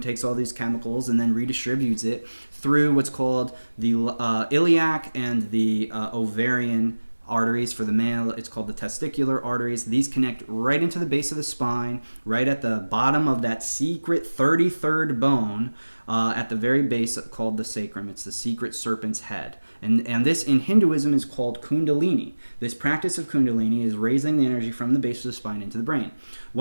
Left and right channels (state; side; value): inverted; both; correlation -1.00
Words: all these chemicals, and then redistributes it through what's called the iliac and the ovarian arteries. For the male, it's called the testicular arteries. These connect right into the base of the spine, right at the bottom of that secret 33rd bone, at the very base, called the sacrum. It's the secret serpent's head. And this in Hinduism is called kundalini. This practice of kundalini is raising the energy from the base of the spine into the brain.